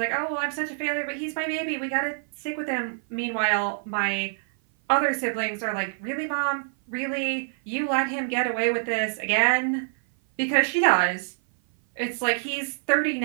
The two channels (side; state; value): left; silent; 56 dB below the other